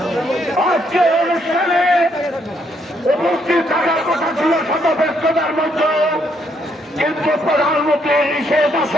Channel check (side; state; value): both; normal; correlation 0.73